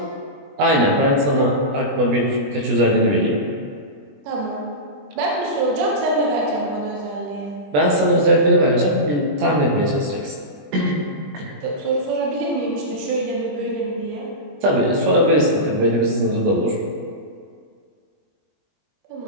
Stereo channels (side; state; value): left; late; 20 ms